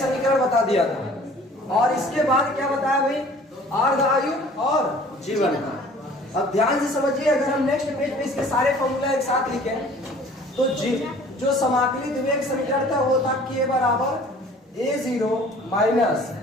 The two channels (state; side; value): normal; both; correlation 0.50